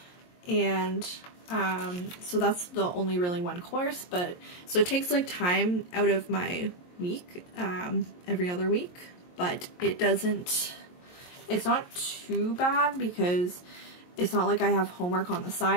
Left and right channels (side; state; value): right; late; 22 ms